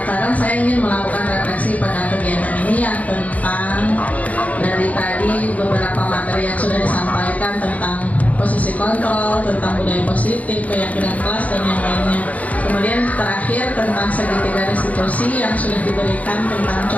saya ingin melakukan refleksi pada kegiatan ini yang tentang dari tadi beberapa materi yang sudah disampaikan tentang posisi kontrol, tentang budaya positif, keyakinan kelas dan yang lainnya. Kemudian terakhir tentang segitiga restitusi yang sudah diberikan tentang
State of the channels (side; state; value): right; late; 0.071 ms